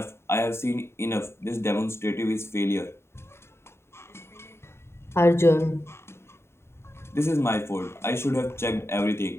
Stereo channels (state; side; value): late; right; 0.12 ms